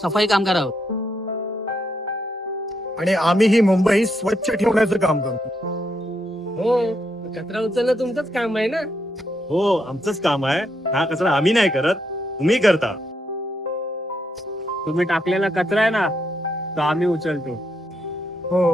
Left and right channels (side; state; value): both; normal; correlation 0.79